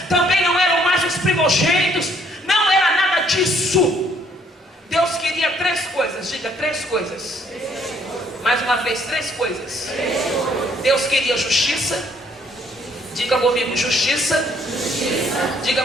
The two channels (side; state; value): both; normal; correlation 0.65